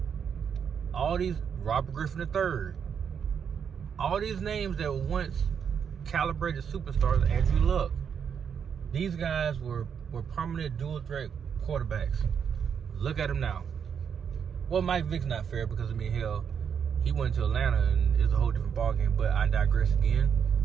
all these, Robert Griffin III, all these names that were once calibrated superstars, Andrew Luck. These guys were permanent dual threat quarterbacks. Look at them now. Well, Mike Vick's not fair because, I mean, hell, he went to Atlanta and it's a whole different ballgame, but I digress again.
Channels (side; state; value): left; quieter; 7.3 dB